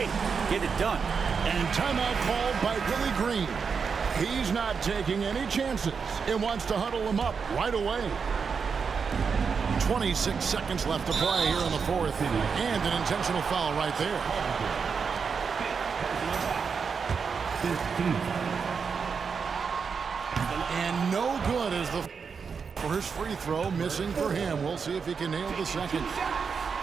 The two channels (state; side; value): quieter; left; 5.8 dB